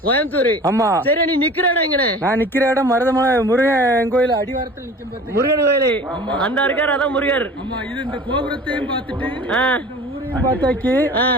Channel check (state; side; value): normal; both; correlation 0.42